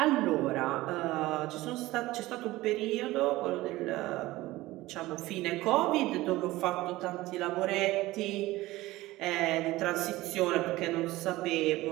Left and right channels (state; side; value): quieter; left; 18.2 dB